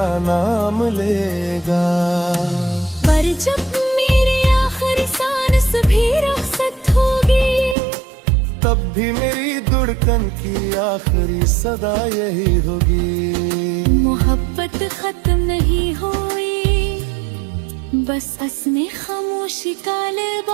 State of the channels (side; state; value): left; drops out; at 7.8 s